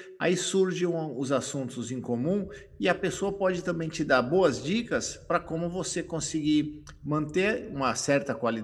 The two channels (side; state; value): both; identical; correlation 1.00